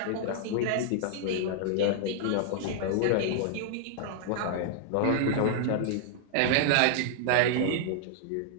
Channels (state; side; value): different; both; correlation -0.01